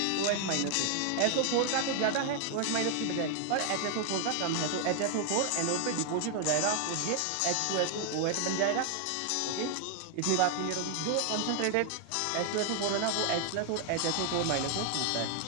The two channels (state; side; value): different; both; correlation 0.00